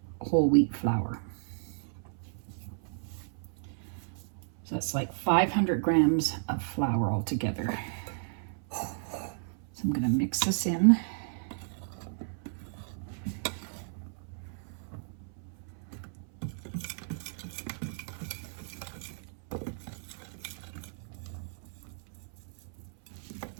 whole wheat flour. So that's like 500 grams of flour altogether. So I'm going to mix this in.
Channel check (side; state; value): left; silent; 56 dB below the other